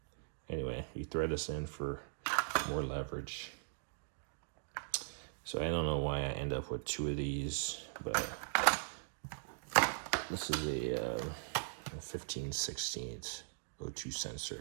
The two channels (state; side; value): silent; left; digital silence